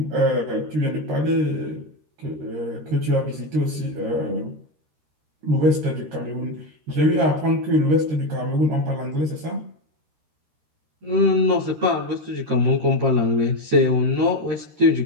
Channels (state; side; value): late; left; 13 ms